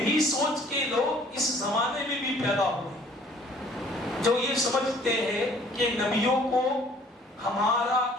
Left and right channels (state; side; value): normal; both; correlation 0.56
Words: سوچ کے لوگ اس زمانے میں بھی پیدا ہوئے جو یہ سمجھتے ہیں کہ نبیوں کو ہمارا